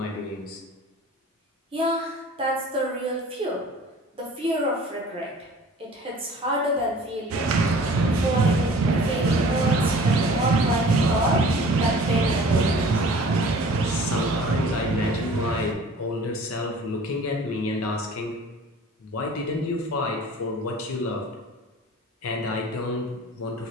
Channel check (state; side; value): normal; both; correlation 0.46